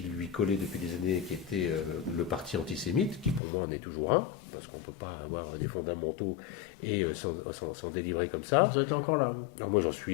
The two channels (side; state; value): right; drops out; at 3.4 s